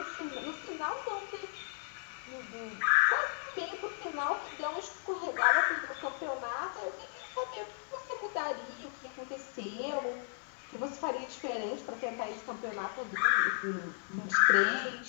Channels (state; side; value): silent; right; 54 dB below the other